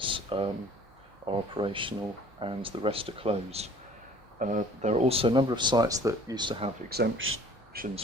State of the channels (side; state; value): both; normal; correlation 0.51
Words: are operational and the rest are closed. There are also a number of sites that used to have exemptions